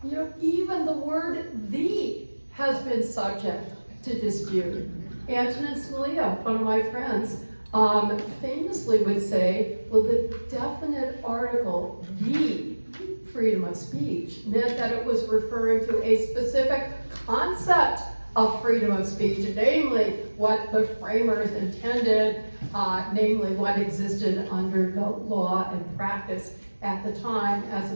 You know, even the word "the" has been subject to dispute. Antonin Scalia, one of my friends, famously would say, well, the definite article, "the" freedom of speech, meant that it was referring to a specific concept of freedom of speech, namely what the framers intended, namely what existed under the law and practice at the time, as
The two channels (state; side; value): inverted; both; correlation -1.00